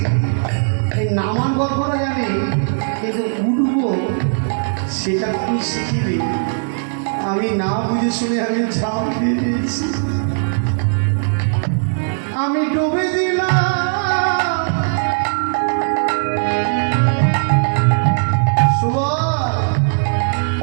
এই নামান গল্পটা জানি কিন্তু উঠবো সেটা তুই শিখিবি। আমি না বুঝে শুনে আমি ঝাঁপ দিয়ে দিয়েছি, আমি ডুবে দিলাম।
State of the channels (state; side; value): silent; left; digital silence